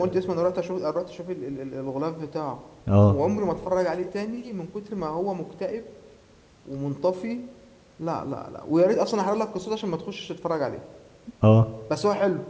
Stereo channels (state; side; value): identical; both; correlation 1.00